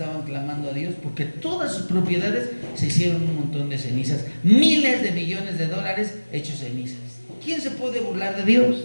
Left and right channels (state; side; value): inverted; both; correlation -1.00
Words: clamando a Dios porque todas sus propiedades se hicieron un montón de cenizas, miles de millones de dólares hechos cenizas. ¿Quién se puede burlar de Dios?